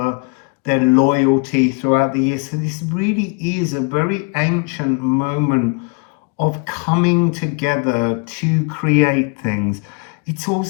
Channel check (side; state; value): right; quieter; 34.8 dB